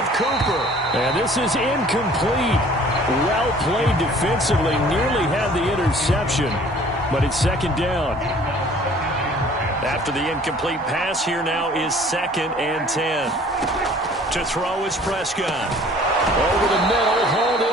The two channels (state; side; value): normal; both; correlation 0.52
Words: Cooper. And this is incomplete. Well played defensively. Nearly had the interception, but it's 2nd down. After the incomplete pass, here now is 2nd and 10. To throw is Prescott. Over the middle, hauled